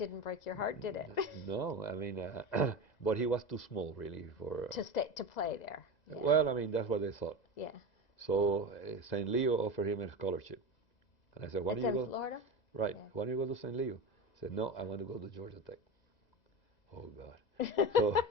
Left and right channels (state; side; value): late; right; 2.0 ms